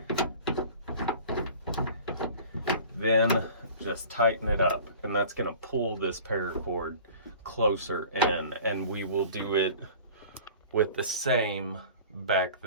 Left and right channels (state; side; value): inverted; both; correlation -0.43